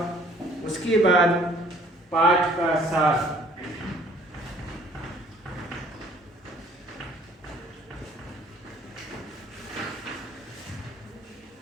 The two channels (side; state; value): both; normal; correlation 0.57